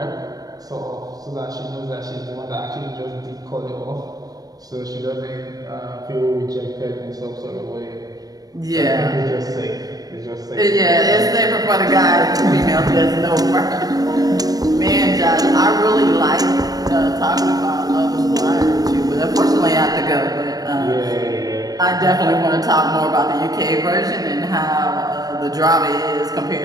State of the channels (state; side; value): late; left; 0.18 ms